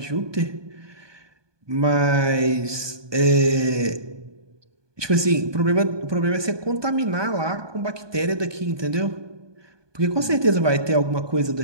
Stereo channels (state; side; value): late; left; 1.2 ms